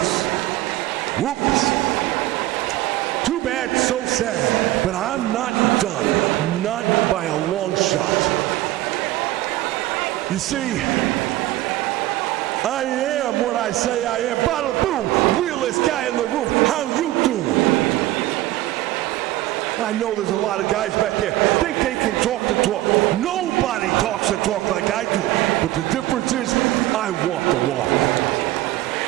Whoops. Too bad, so sad, but I'm not done, not by a long shot. You see, I am what I say I am. Bada boom, realest guy in the room. How you doing? I know there's a lot of guys back there think they can talk the talk. Nobody talks the talk like I do, but the difference is I walk the walk.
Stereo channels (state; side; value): quieter; left; 16.3 dB